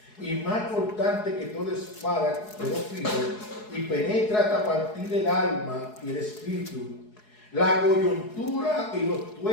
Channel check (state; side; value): late; right; 4.7 ms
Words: y más cortante que toda espada de dos filos, y penetra hasta partir el alma y el espíritu, la coyuntura y los